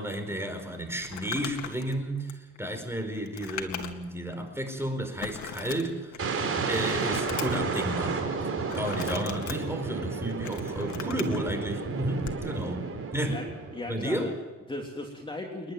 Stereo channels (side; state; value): both; normal; correlation 0.41